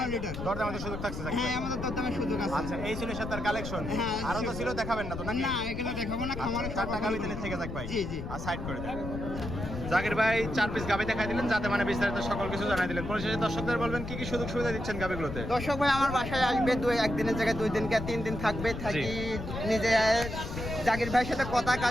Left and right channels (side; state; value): left; noise; rumble, 7 dB below the sound